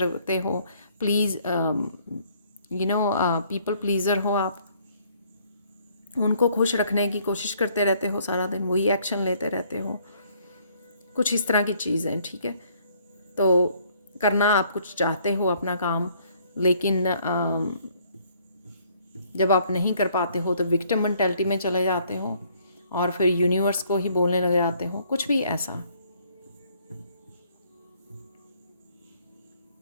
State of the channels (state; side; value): inverted; both; correlation -0.63